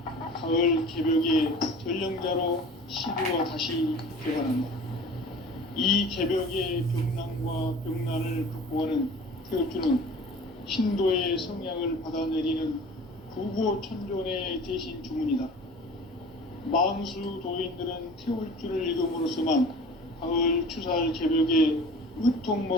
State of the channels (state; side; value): normal; both; correlation 0.42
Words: 가을 개벽의 전령자로 시구가 다시 개발한다. 이 개벽의 병난과 병난을 극복하는 태울주는 신도의 성향을 받아내리는 구고천존의 대신 주문이다. 망수 도인들은 태울주를 읽음으로써만 가을 추살 개벽의